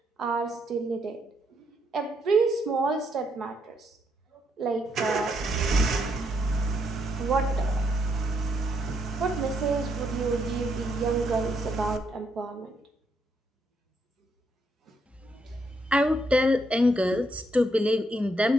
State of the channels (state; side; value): normal; both; correlation 0.76